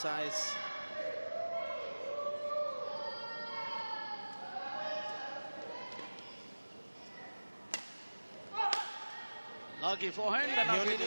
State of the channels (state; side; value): inverted; both; correlation -1.00